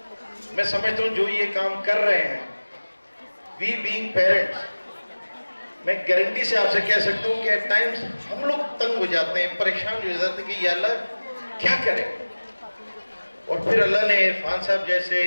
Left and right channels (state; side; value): inverted; both; correlation -1.00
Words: میں سمجھتا ہوں جو یہ کام کر رہے ہیں، وی بینگ پیرنٹس، میں گارنٹی سے آپ سے کہہ سکتا ہوں کہ ایٹ ٹائمز ہم لوگ تنگ ہو جاتے ہیں، پریشان ہو جاتے ہیں کہ یا اللہ کیا کریں. اور پھر اللہ نے عرفان صاحب جیسے،